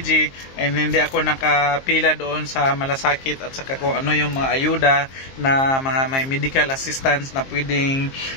and hindi ako nakapila doon sa malasakit at saka kung ano yung mga ayuda na mga may medical assistance na pwedeng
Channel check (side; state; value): right; late; 22 ms